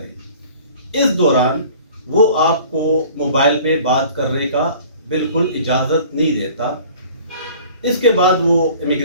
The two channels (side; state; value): both; inverted; correlation -0.48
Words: इस दौरान वो आपको मोबाइल पे बात करने का बिल्कुल इजाज़त नहीं देता। इसके बाद वो